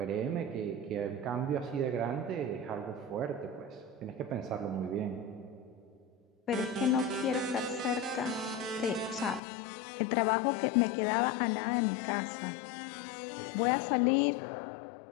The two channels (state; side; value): drops out; right; at 9.4 s